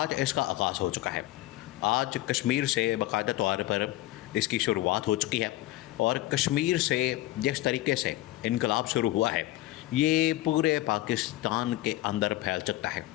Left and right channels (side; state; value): right; quieter; 16.7 dB